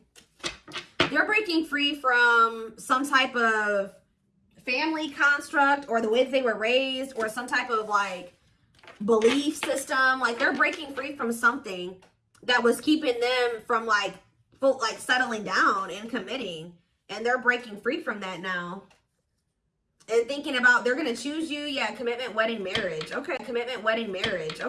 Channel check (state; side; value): identical; both; correlation 1.00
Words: They're breaking free from some type of family construct, or the way that they were raised, or some type of like belief system. Like they're breaking free from something that was keeping them from like settling down and committing, and they're breaking free from that now and thinking about they're going to choose you. Yeah, commitment, wedding, marriage. Okay, commitment, wedding, marriage.